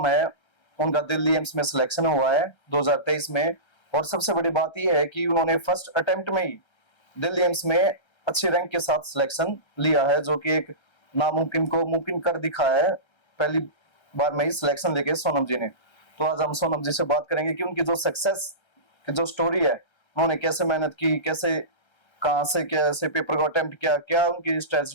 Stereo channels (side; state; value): right; late; 1.3 ms